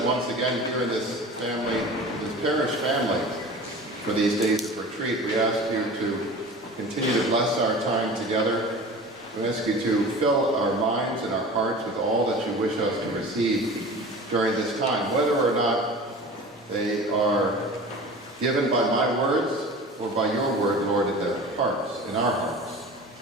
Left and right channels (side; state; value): both; normal; correlation 0.38